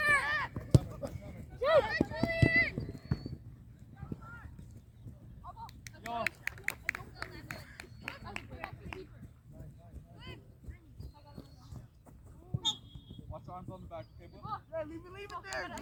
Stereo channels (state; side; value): identical; both; correlation 1.00